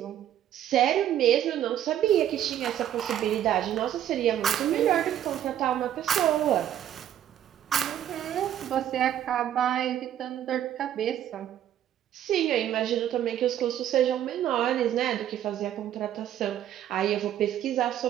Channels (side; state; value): left; quieter; 11.1 dB